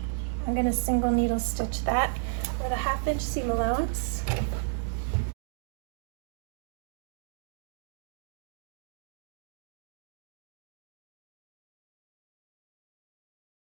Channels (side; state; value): left; silent; digital silence